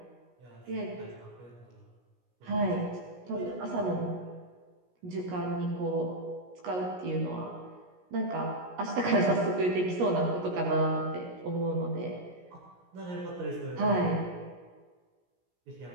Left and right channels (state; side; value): late; left; 17 ms